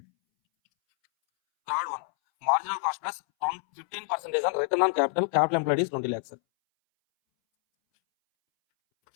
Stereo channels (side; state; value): right; silent; 60 dB below the other